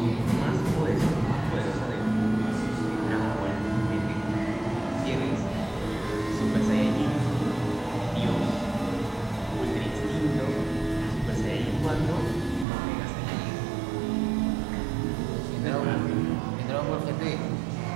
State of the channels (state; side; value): drops out; left; at 12.7 s